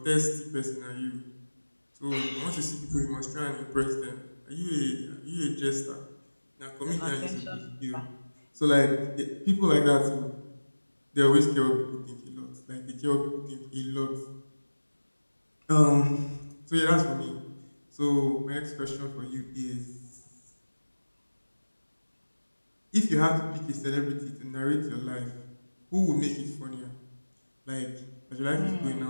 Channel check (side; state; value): both; inverted; correlation -1.00